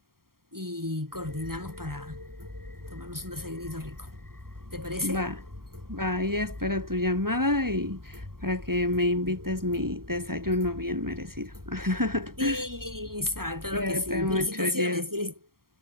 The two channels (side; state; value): left; late; 0.93 ms